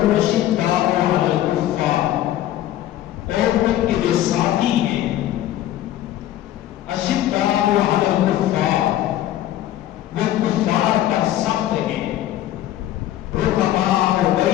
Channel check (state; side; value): quieter; right; 13.2 dB